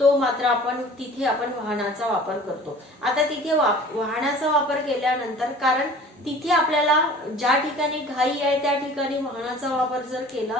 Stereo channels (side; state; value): both; normal; correlation 0.46